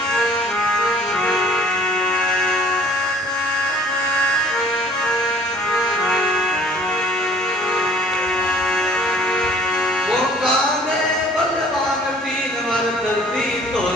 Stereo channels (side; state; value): both; normal; correlation 0.53